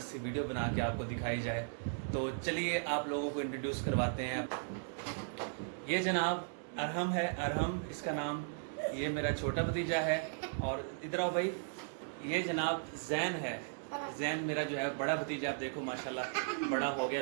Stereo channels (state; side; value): silent; left; digital silence